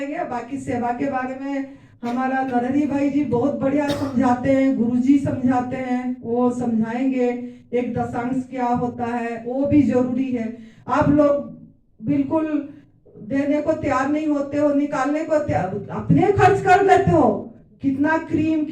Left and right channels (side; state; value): both; identical; correlation 1.00